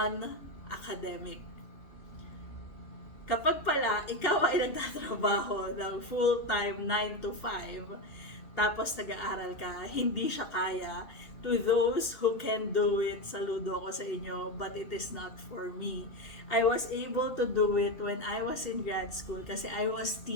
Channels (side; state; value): right; late; 2.8 ms